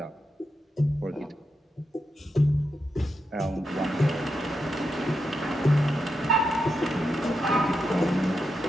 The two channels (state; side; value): normal; both; correlation 0.86